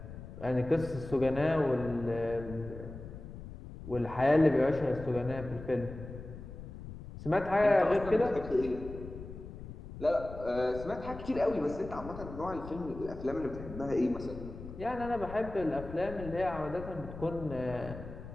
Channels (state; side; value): noise; left; rumble, 12 dB below the sound